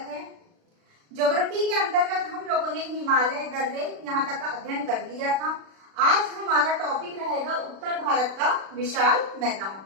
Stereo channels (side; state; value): left; late; 36 ms